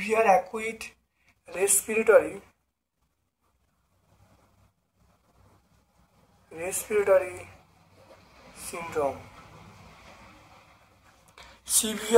acute respiratory, respiratory syndrome.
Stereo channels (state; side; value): identical; both; correlation 1.00